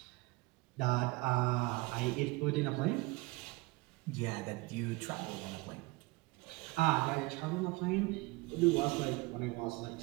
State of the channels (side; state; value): left; quieter; 23.2 dB